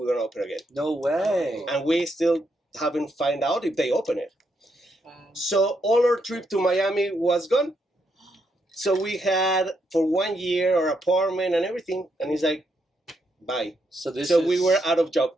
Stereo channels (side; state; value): both; normal; correlation 0.79